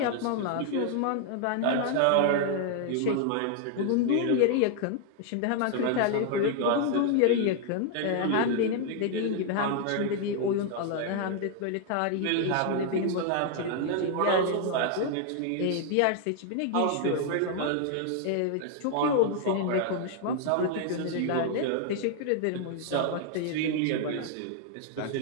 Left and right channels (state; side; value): different; both; correlation 0.00